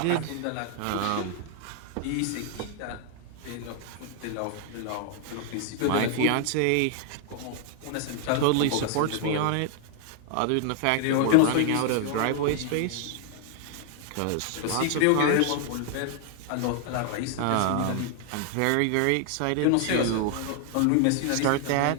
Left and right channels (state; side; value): different; both; correlation 0.00